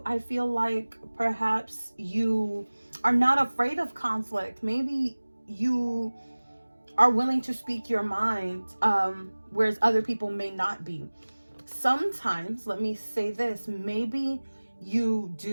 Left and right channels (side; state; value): both; inverted; correlation -1.00